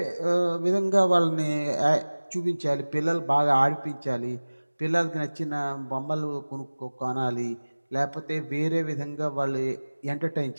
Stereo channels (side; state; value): both; inverted; correlation -1.00